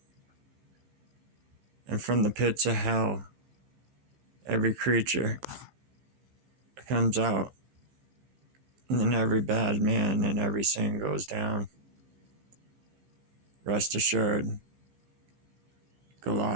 and from the pits of hell, every creature comes out, and then every bad man and every sin goes down. Rest assured,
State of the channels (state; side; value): late; left; 15 ms